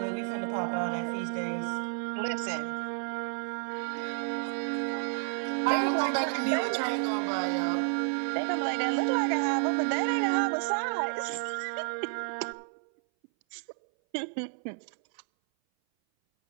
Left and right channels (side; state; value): left; silent; 57 dB below the other